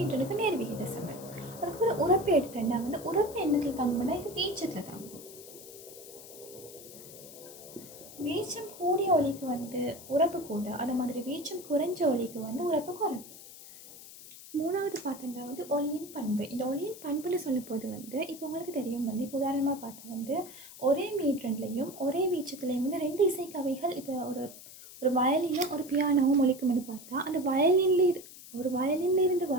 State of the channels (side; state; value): left; noise; hiss, 16 dB below the sound